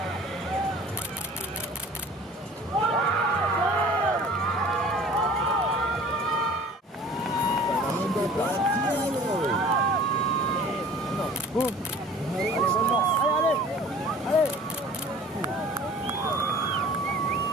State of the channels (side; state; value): both; normal; correlation 0.47